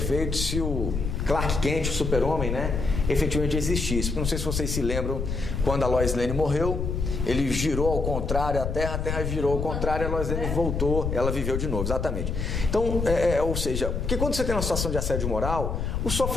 se o Clark Kent, o super-homem, né, efetivamente existisse. Não sei se vocês se lembram, quando a Lois Lane morreu, ele girou ao contrário a Terra virou ao contrário, a Lois Lane voltou, ela viveu de novo, exatamente. Então, ou seja, porque quando você tem uma situação de assédio moral, o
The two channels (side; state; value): left; noise; rumble, 2 dB below the sound